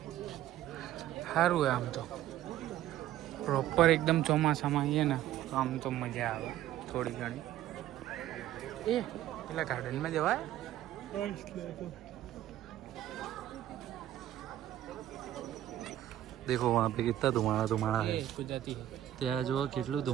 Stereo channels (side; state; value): left; quieter; 13.1 dB